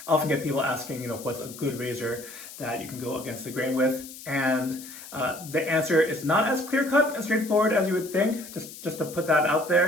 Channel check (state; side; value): noise; left; hiss, 15 dB below the sound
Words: often get people asking, what's a good razor that you can go against the grain with? And the answer is not as clear-cut and straightforward as you would think, just to put that out